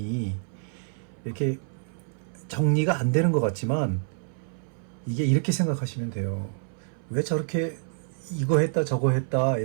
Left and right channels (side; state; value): left; silent; 58 dB below the other